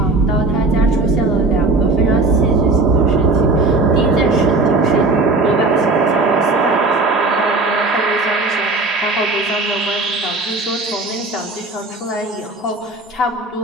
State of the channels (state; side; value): quieter; left; 3.3 dB